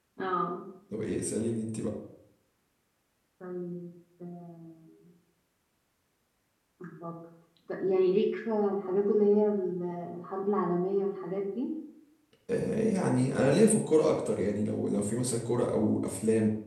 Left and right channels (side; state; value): both; identical; correlation 1.00